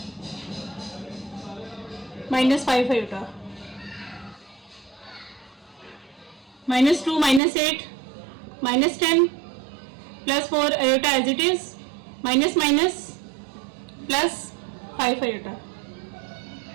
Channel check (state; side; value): drops out; left; at 7.4 s